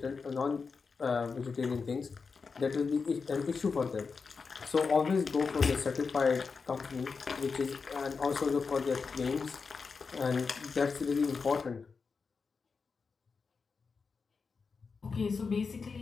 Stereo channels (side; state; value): right; quieter; 5.0 dB